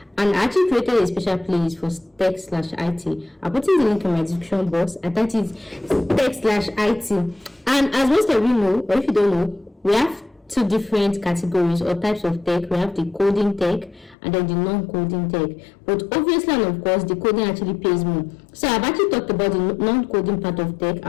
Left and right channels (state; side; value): drops out; right; at 14.2 s